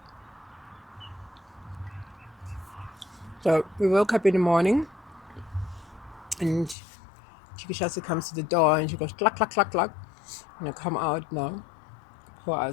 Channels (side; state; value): right; drops out; at 6.8 s